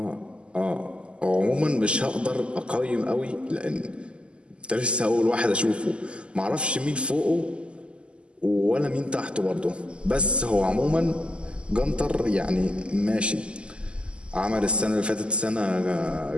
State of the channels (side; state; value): left; late; 0.052 ms